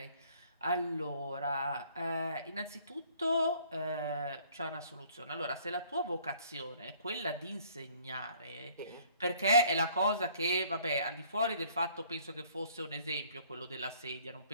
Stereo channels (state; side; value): inverted; both; correlation -0.59